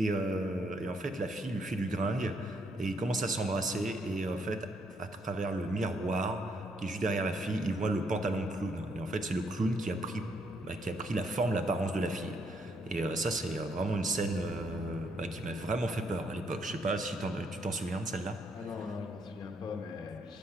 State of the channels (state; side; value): normal; both; correlation 0.73